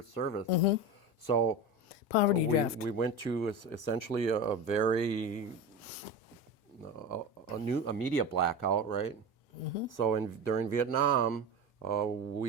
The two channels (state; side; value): normal; both; correlation 0.25